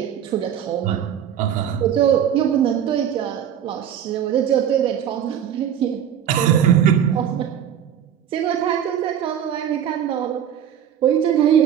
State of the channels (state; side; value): quieter; left; 9.4 dB